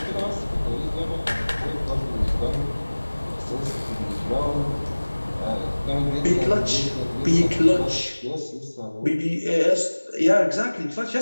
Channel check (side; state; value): both; inverted; correlation -1.00